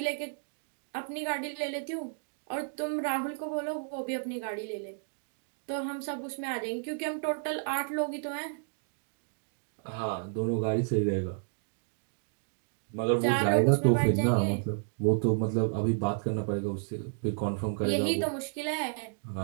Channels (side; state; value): left; silent; digital silence